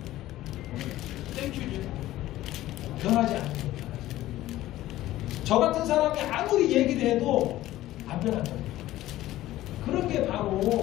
땡큐죠. 변하지 않는 거예요. 저 같은 사람이 아무리 얘기를 해도 안 변한다. 그런 게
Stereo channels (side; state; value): right; quieter; 15.2 dB